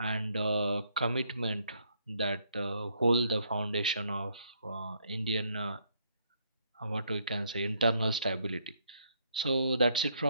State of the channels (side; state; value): both; inverted; correlation -0.70